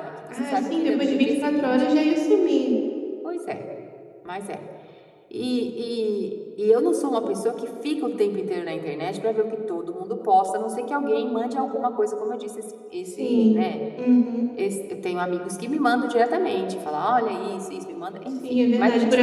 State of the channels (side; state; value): both; identical; correlation 1.00